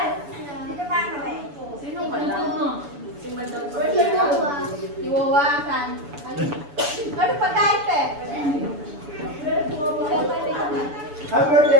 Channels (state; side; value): late; left; 7.0 ms